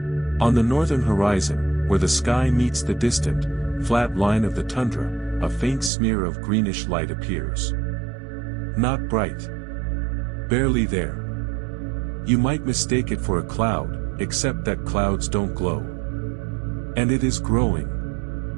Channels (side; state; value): left; drops out; at 5.9 s